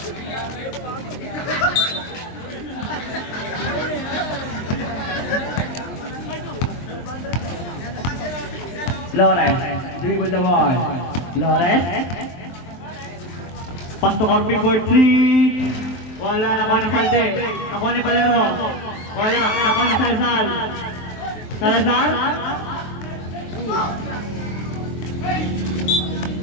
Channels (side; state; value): right; late; 23 ms